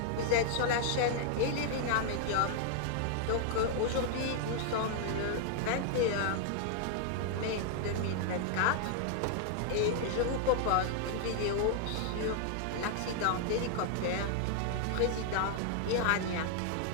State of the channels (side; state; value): both; different; correlation 0.00